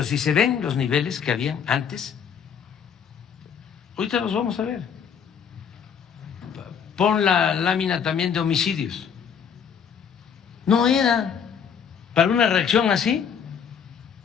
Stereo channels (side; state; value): right; quieter; 7.4 dB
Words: si se ven los niveles que habían antes, ahorita los vamos a ver. Pon la lámina también de homicidios. No era para una reacción así,